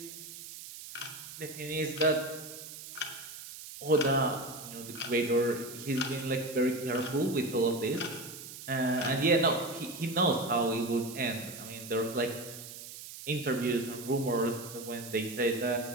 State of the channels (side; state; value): right; noise; hiss, 12 dB below the sound